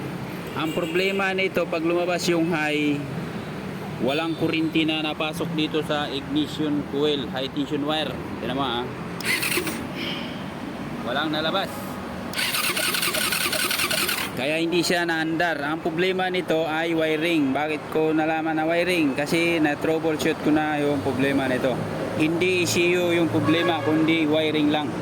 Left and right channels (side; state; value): both; identical; correlation 1.00